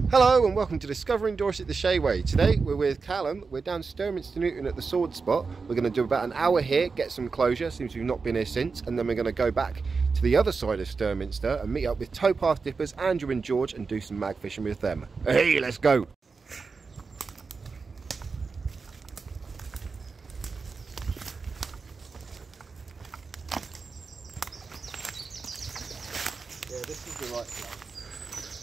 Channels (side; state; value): left; quieter; 4.7 dB